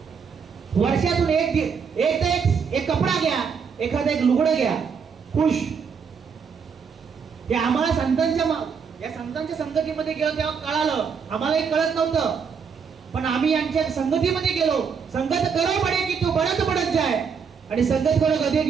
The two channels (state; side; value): quieter; left; 6.2 dB